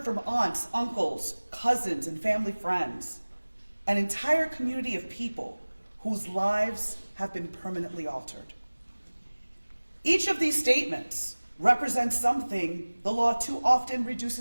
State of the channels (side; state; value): both; inverted; correlation -1.00